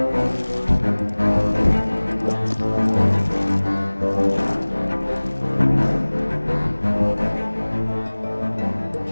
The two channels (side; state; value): both; inverted; correlation -1.00